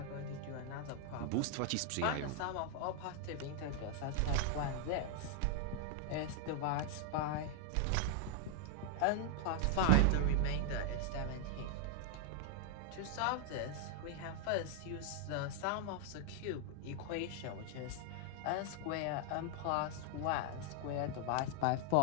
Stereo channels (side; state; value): both; different; correlation 0.00